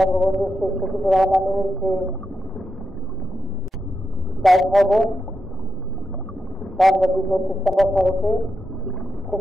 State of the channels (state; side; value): normal; both; correlation 0.85